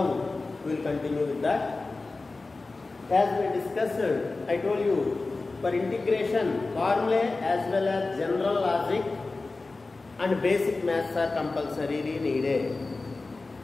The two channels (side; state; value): right; quieter; 3.5 dB